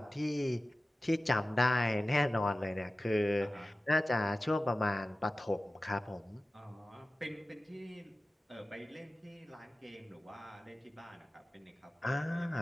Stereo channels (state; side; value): normal; both; correlation 0.96